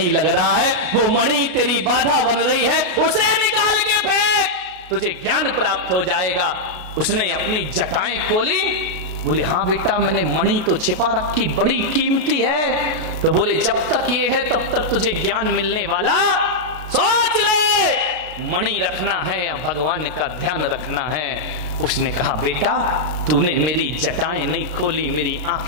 लग रहा है। वो मणि तेरी बाधा बन रही है, उसे निकाल के फेंक, तुझे ज्ञान प्राप्त हो जाएगा। उसने अपनी जटाएं खोली, बोले हाँ बेटा मैंने मणि तो छिपा रखी, बड़ी कीमती है। तो बोले जब तक ये है तब तक तुझे ज्ञान मिलने वाला, सोच ले मणि रखना है या भगवान का ध्यान रखना है। उसने कहा बेटा तूने मेरी जटाएं नहीं खोली, मेरी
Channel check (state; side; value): late; left; 33 ms